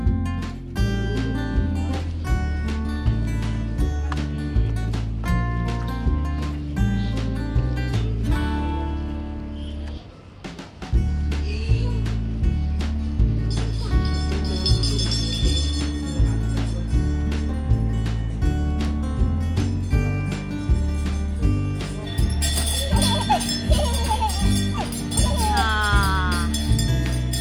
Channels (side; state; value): both; identical; correlation 1.00